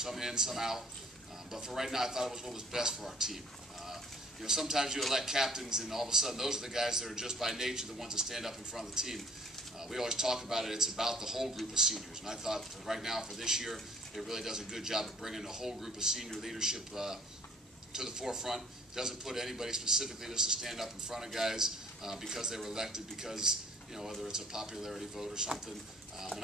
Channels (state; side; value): normal; both; correlation 0.56